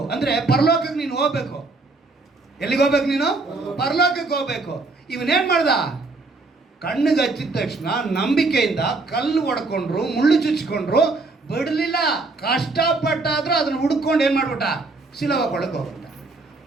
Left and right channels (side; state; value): left; quieter; 3.5 dB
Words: ಅಂದರೆ ಪರಲೋಕಕ್ಕೆ ನೀನು ಹೋಗ್ಬೇಕು. ಎಲ್ಲಿಗೆ ಹೋಗ್ಬೇಕು ನೀನು? ಪರಲೋಕಕ್ಕೆ ಹೋಗ್ಬೇಕು. ಇವನೇನು ಮಾಡ್ದ? ಕಣ್ಣಿಗೆ ಹಚ್ಚಿದ ತಕ್ಷಣ ನಂಬಿಕೆಯಿಂದ ಕಲ್ಲು ಹೊಡ್ಕೊಂಡ್ರು, ಮುಳ್ಳು ಚುಚ್ಕೊಂಡ್ರು, ಬಿಡಲಿಲ್ಲ. ಕಷ್ಟಪಟ್ಟಾದ್ರೂ ಅದನ್ನು ಹುಡ್ಕೊಂಡು ಏನು ಮಾಡ್ಬಿಟ್ಟ? ಸಿಲೋವ ಕೊಳಕ್ಕೆ ಹೋಗ್ಬಿಟ್ಟ.